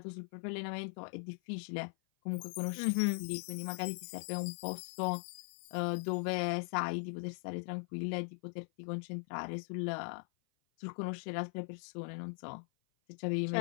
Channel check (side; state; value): right; silent; 51 dB below the other